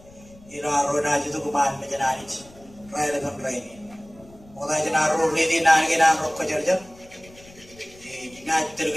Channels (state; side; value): noise; left; rumble, 24 dB below the sound